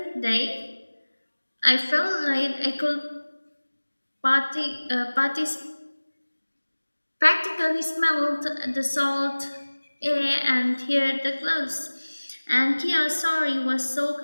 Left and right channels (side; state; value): both; inverted; correlation -1.00